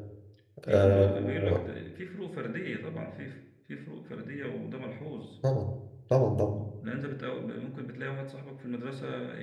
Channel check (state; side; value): identical; both; correlation 1.00